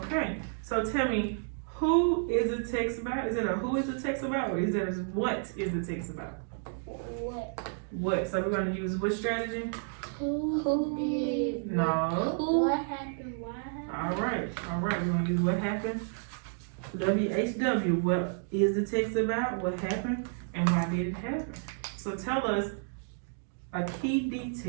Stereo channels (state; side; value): silent; left; digital silence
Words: So tell me, who is the text about? Is it a who is the text about, or is it a what is the text about? what? What? So we're gonna use which strategy? Who did? No. What happened? Why happened? All right. We're gonna use what happened. WHW. What is the text about? What happened? And why did it happen? So tell us a key